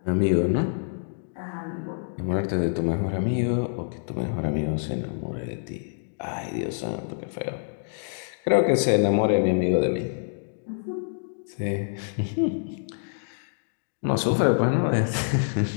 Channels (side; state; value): right; silent; digital silence